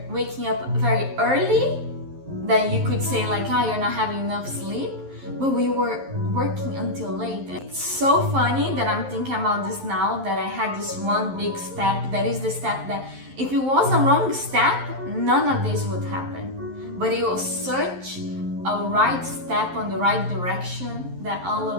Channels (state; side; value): late; left; 11 ms